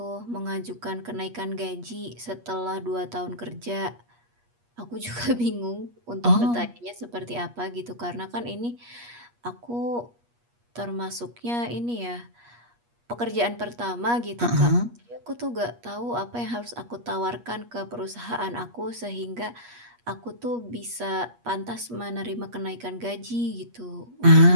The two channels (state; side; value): late; left; 8.4 ms